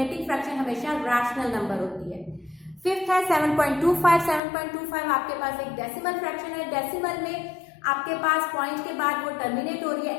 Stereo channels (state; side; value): drops out; right; at 4.4 s